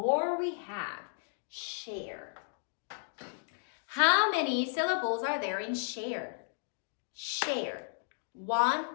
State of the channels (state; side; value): silent; right; digital silence